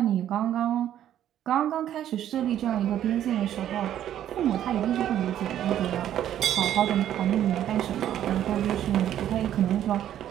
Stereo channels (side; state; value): left; quieter; 11.2 dB